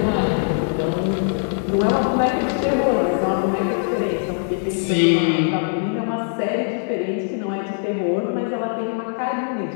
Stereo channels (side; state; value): right; silent; digital silence